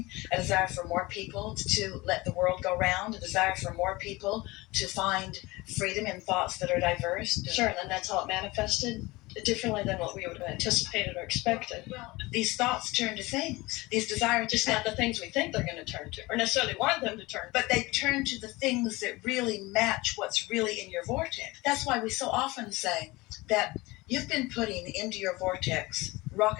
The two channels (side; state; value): right; quieter; 21.8 dB